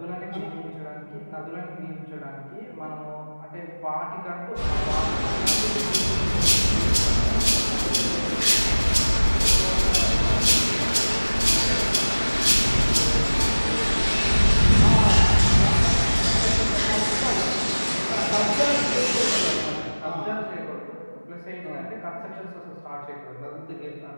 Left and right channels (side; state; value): both; inverted; correlation -1.00